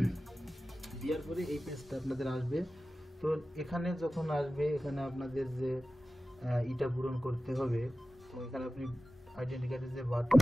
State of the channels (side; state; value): both; normal; correlation 0.95